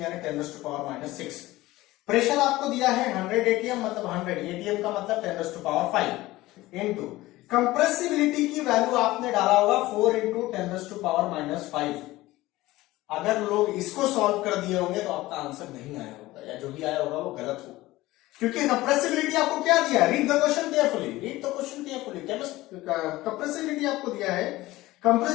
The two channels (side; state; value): right; quieter; 18.0 dB